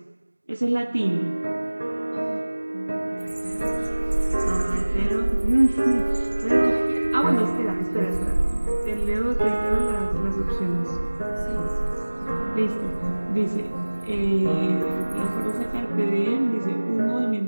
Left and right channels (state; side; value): inverted; both; correlation -1.00